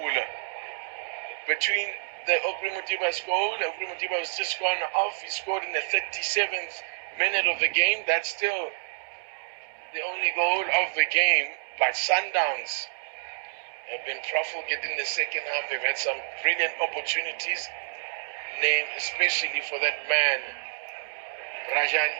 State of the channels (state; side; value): silent; left; digital silence